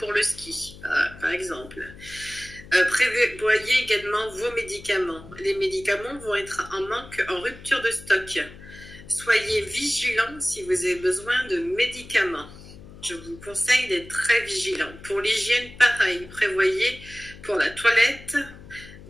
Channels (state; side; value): noise; left; hum, 18 dB below the sound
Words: le ski, par exemple. Prévoyez également vos médicaments. Les médicaments vont être en manque, en rupture de stock. Soyez vigilants si vous avez besoin de médicaments. Je vous conseille d'être très vigilant. Pour l'hygiène, pareil. Prévoyez pour la toilette